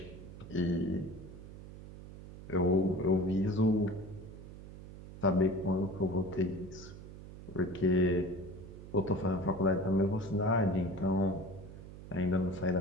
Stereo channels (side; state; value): right; noise; hum, 14 dB below the sound